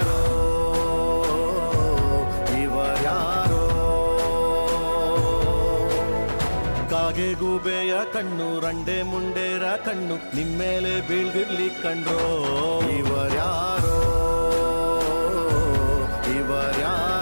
ಇವರ್ಯಾರೋ ಕಾಗೆ ಗೂಬೆಯ ಕಣ್ಣು ರಂಡೆ ಮುಂಡೇರ ಕಣ್ಣು ನಿಮ್ಮೇಲೆ ಬೀಳ್ದಿರ್ಲಿ ಕಂಡ್ರೋ ಇವರ್ಯಾರೋ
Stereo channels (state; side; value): inverted; both; correlation -1.00